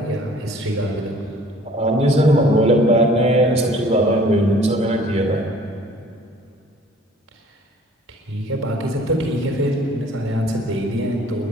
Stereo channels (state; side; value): normal; both; correlation 0.53